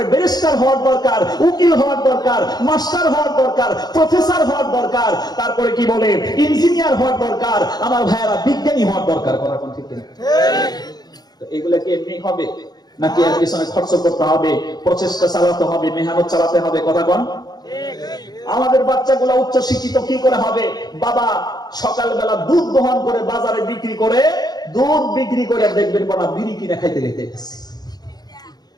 ব্যারিস্টার হওয়ার দরকার, উকিল হওয়ার দরকার, মাস্টার হওয়ার দরকার, প্রফেসর হওয়ার দরকার, তারপরে কি বলে ইঞ্জিনিয়ার হওয়ার দরকার। আমার ভাইয়েরা বিজ্ঞানী হওয়ার দরকার। কথা কোন ঠিক কিনা? তো এগুলা কি এমনি হবে নাকি এর পিছনে খরচ করতে হবে, প্রচেষ্টা চালাতে হবে, মেহনত চালাতে হবে? কথা কোন? আমাদের বাচ্চাগুলা উচ্চ শিক্ষিত কি করে হবে? বাবা সকালবেলা দুধ দহন করে বাজারে বিক্রি করে, দুধ বিক্রি করে দেখবেন বলা বিড়ি কিনে খাইতে খাইতেছে।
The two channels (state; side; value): late; right; 0.19 ms